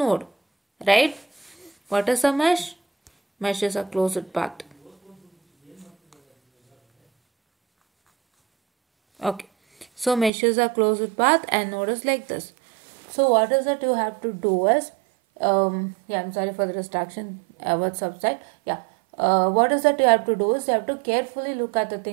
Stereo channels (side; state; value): left; drops out; at 10.3 s